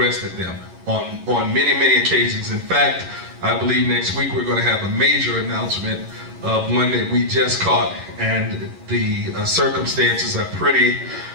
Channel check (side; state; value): left; late; 11 ms